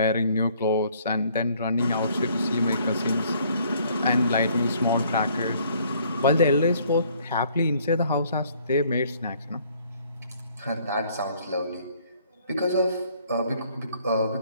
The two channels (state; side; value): inverted; both; correlation -0.61